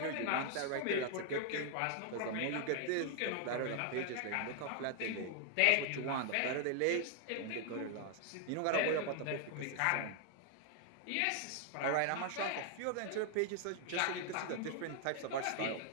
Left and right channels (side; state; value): both; different; correlation 0.00